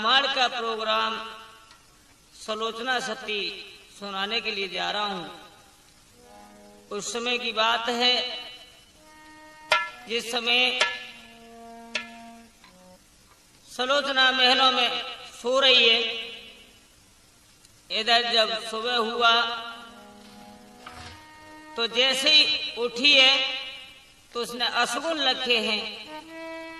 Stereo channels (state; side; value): identical; both; correlation 1.00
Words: का प्रोग्राम सलोचना सती सुनाने के लिए जा रहा हूं। उस समय की बात है जिस समय सलोचना महलों में सो रही है। इधर जब सुबह हुआ तो जैसे ही उठी है तो उसने अशगुन रखे हैं